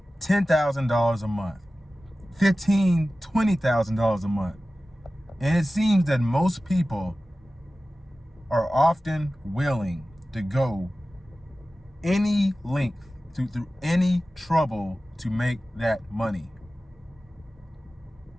$10,000 a month, $15,000, $20,000 a month. And it seems that most people are often willing to go any length, through any trouble to make that money.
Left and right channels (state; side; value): normal; both; correlation 0.96